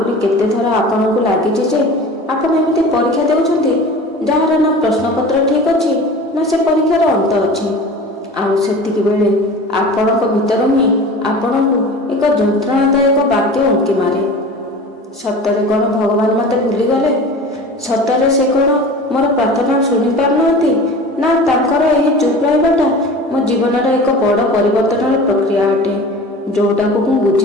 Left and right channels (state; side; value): normal; both; correlation 0.37